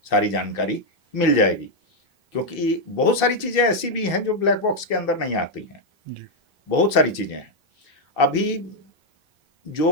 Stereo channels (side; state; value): both; normal; correlation 0.00